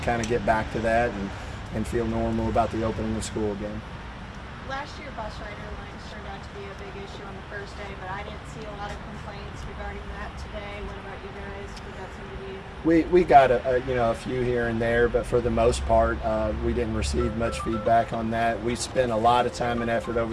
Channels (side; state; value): both; identical; correlation 1.00